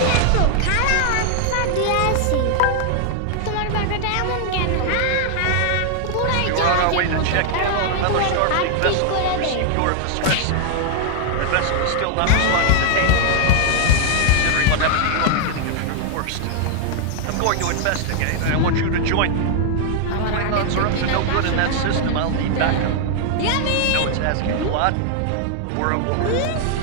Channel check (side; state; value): both; different; correlation 0.00